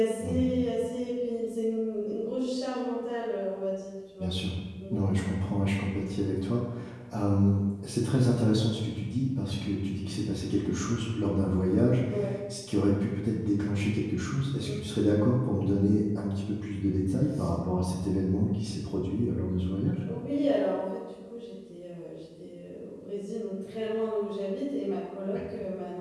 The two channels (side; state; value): both; identical; correlation 1.00